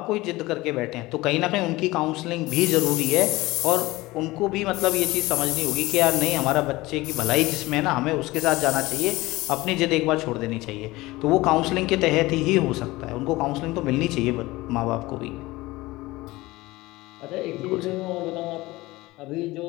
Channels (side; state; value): right; quieter; 19.9 dB